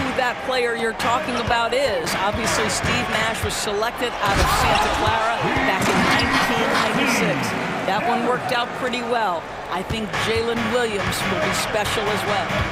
that player you're talking about is. Obviously, Steve Nash was selected out of Santa Clara back in 1996. That one worked out pretty well. I think Jalen Williams will be special as well.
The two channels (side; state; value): both; identical; correlation 1.00